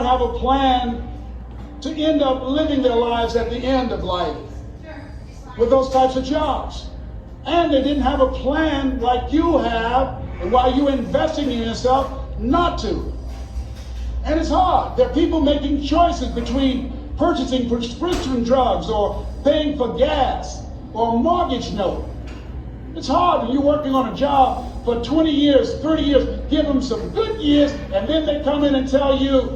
have a plan to end up living their lives at the end of life with those types of jobs. And they didn't have a plan like you have, and why you're investing in yourself not to. And it's hard. There are people making choices between purchasing prescription drugs or paying for gas or a mortgage note. It's hard when you're working on a job for 20 years, 30 years, give them some good years, and then they come in and tell you,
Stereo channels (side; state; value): both; identical; correlation 1.00